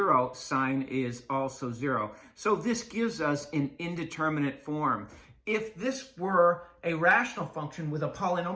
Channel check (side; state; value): both; identical; correlation 1.00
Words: sine is also 0. So this gives us an indeterminate form. If this were a rational function with a